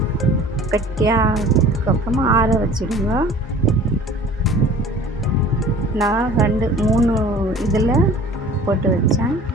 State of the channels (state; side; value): normal; both; correlation 0.46